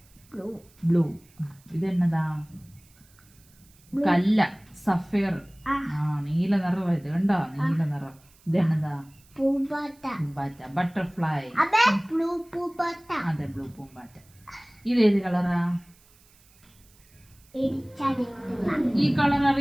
ബ്ലൂ. ഇതെന്നതാ? കല്ല. സഫയർ. നീല നിറം. ഇത് കണ്ടോ? നീല നിറം. ഇതെന്നതാ? പൂമ്പാറ്റ. ബട്ടർഫ്ലൈ. അതെ, ബ്ലൂ പൂമ്പാറ്റ. ഇതേത് കളറാ? ഈ കളർ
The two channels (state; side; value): noise; right; hiss, 29 dB below the sound